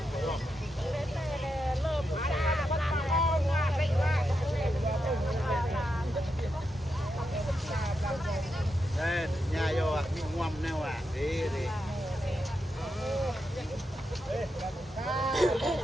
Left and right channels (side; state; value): both; normal; correlation 0.85